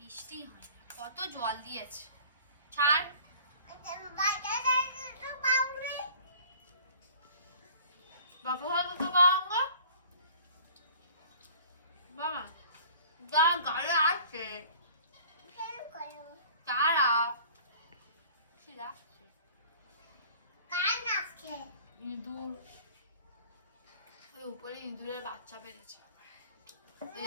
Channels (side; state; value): both; inverted; correlation -0.48